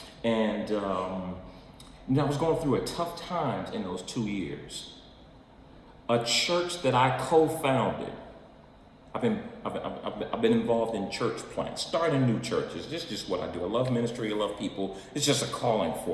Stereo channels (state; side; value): identical; both; correlation 1.00